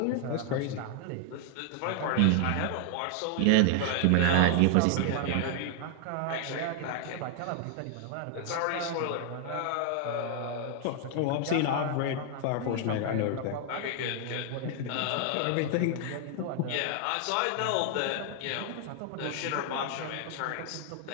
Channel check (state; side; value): different; both; correlation 0.00